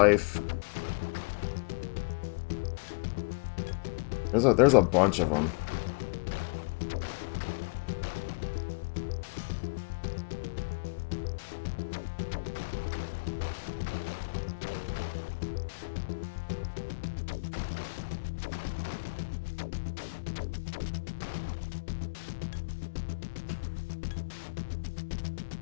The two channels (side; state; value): right; quieter; 32.3 dB